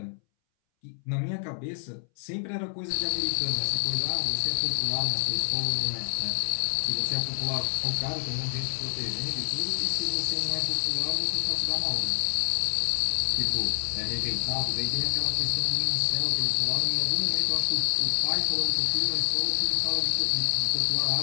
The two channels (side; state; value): right; silent; 60 dB below the other